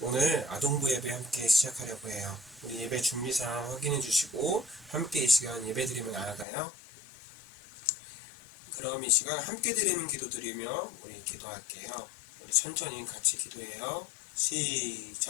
아동부 예배 함께 시작하려고 해요. 우리 예배 준비사항 확인해 주시고 함께 이 시간 예배 드리며 나아가요. 그럼 이 시간 함께 드리는 기도 드리며 우리 기도할게요. 우리 천천히 같이 기도해요.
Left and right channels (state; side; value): drops out; right; at 6.5 s